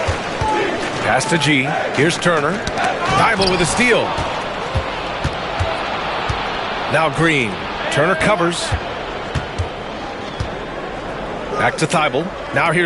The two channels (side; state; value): both; identical; correlation 1.00